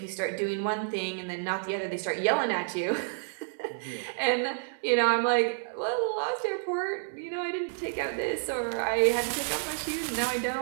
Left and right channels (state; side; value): silent; left; 58 dB below the other